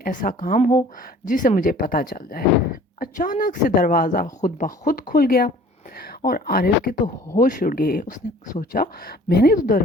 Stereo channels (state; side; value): normal; both; correlation 0.50